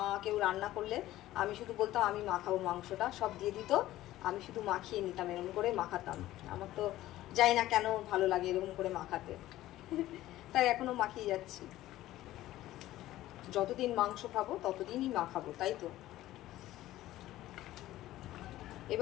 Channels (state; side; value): quieter; right; 15.1 dB